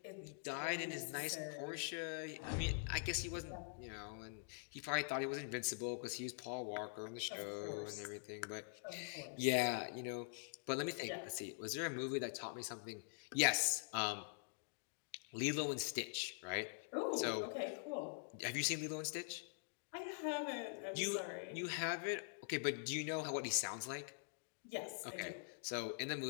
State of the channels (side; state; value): right; silent; digital silence